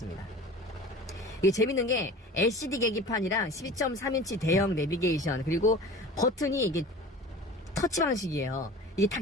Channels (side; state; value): both; normal; correlation 0.39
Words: 이게 재밌는 게 LCD 계기판이랑 12.3인치 대형 내비게이션 그리고 버튼이 이게 터치 방식이에요. 이게 다